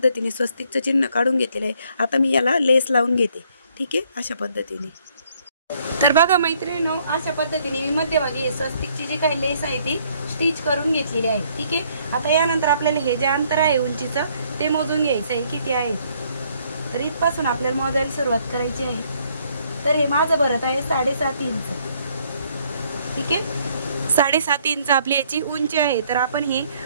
स्वस्तिकचं चिन्ह काढून घेतलेलं आहे। आता मी याला लेस लावून घेते, ठीक आहे, अशा पद्धतीने। तर बघा मैत्रिणींनो, अशा पद्धतीने मी मध्यभागी स्वस्तिकची जी काही लेस आहे ती स्टिच करून घेतलेली आहे, ठीक आहे। आता यानंतर आपल्याला हे जे अंतर आहे उंचीचं ते मोजून घ्यायचं आहे, किती आहे। तर इथपासून आपल्याला मोजायला सुरुवात करायची आहे। तर हे माझं भरत आहे 7.5 इंच, ठीक आहे। 7.5 इंच आपली याची उंची आहे। तर आपण हे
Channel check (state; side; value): inverted; both; correlation -0.66